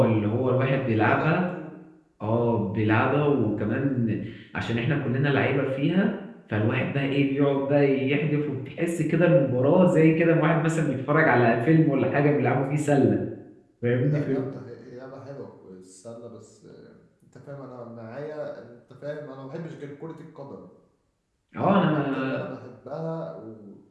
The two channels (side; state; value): both; identical; correlation 1.00